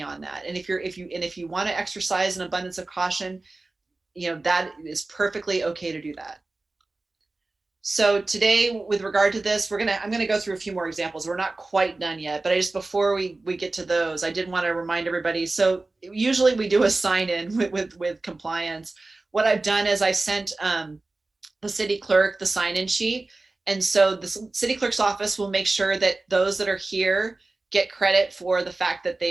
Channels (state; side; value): quieter; left; 3.2 dB